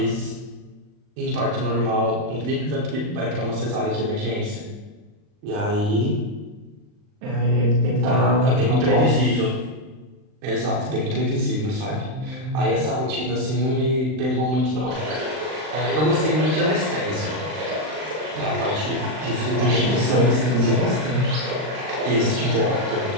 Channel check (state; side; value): late; left; 39 ms